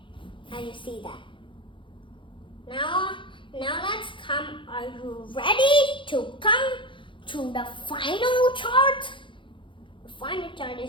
Now you see that. Now let's come. Are you ready to come to the final chart? The final chart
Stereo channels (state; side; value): late; right; 0.24 ms